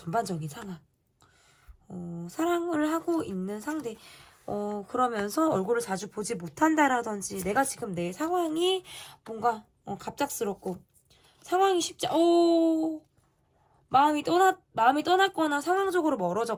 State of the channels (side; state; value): both; identical; correlation 1.00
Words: 상황. 사랑을 하고 있는 상대. 그러면서 얼굴을 자주 보지 못한다라든지 내가 지금 내 상황이 뭔가 갑작스럽고 상황이 마음이 떠났거나 상황적으로